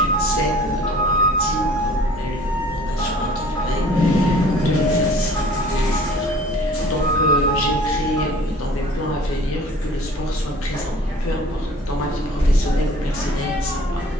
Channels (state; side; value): normal; both; correlation 0.50